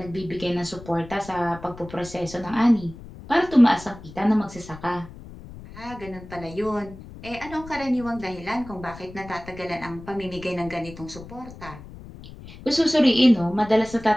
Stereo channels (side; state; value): left; noise; rumble, 16 dB below the sound